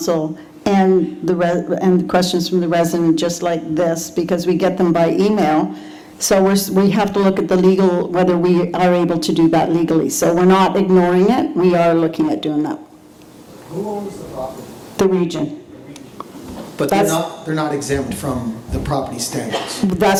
and the questions from the resident, just like this, because we get them by email. So we have to look at the legal, whether we are able to do that legally. So we're not ignoring it, we are looking at doing that. Who owns the property? The region. But That's- they're not exempt from the property standards.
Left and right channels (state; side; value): identical; both; correlation 1.00